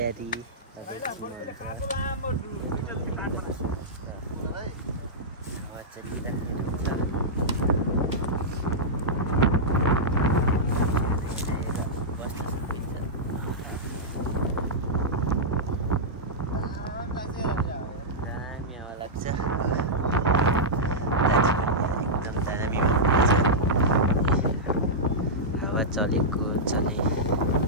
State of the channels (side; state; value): both; normal; correlation -0.11